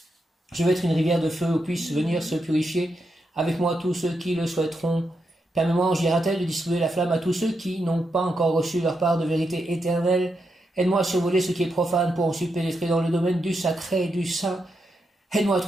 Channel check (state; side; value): normal; both; correlation 0.84